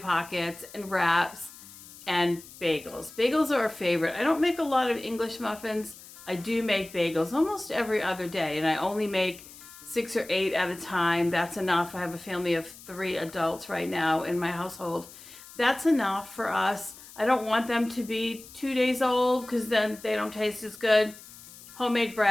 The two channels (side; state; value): left; noise; hiss, 18 dB below the sound